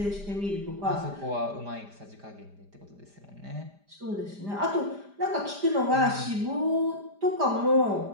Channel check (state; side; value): late; left; 5.0 ms